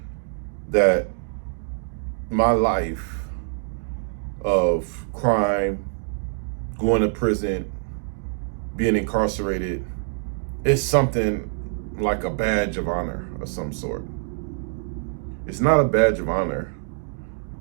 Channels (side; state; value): left; silent; digital silence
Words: that my life of crime, going to prison, being incarcerated, is something like a badge of honor of some sort. It's not a badge of honor.